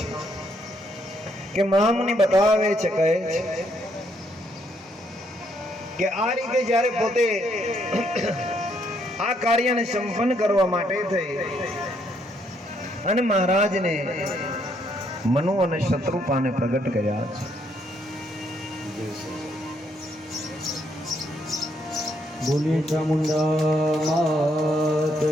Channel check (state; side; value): normal; both; correlation 0.72